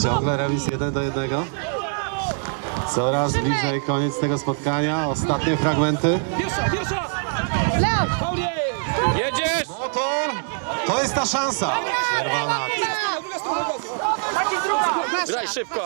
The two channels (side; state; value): left; silent; 63 dB below the other